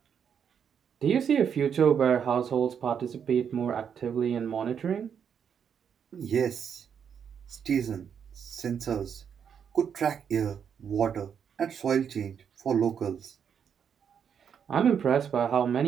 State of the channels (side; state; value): left; quieter; 7.7 dB